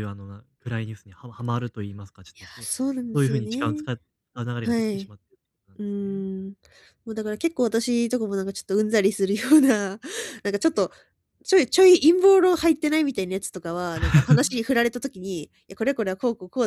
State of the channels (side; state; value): both; identical; correlation 1.00